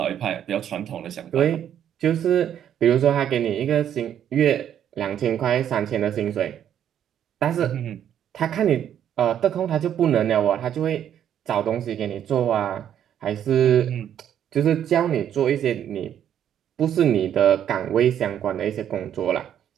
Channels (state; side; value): quieter; left; 9.9 dB